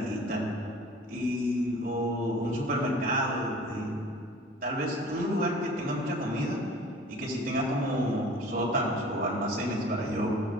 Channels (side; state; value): both; normal; correlation 0.46